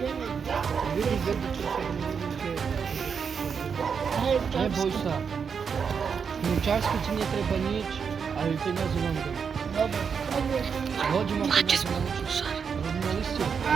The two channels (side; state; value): left; quieter; 6.4 dB